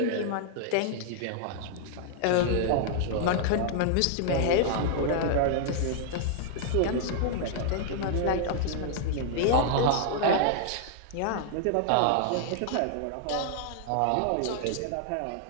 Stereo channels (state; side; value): different; both; correlation -0.01